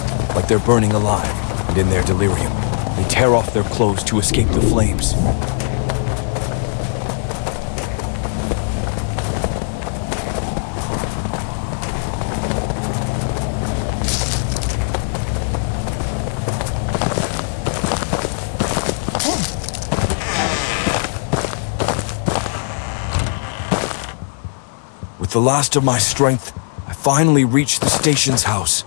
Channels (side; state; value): right; silent; 66 dB below the other